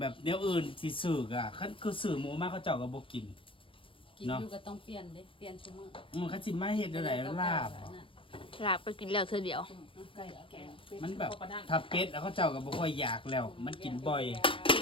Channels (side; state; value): right; late; 0.25 ms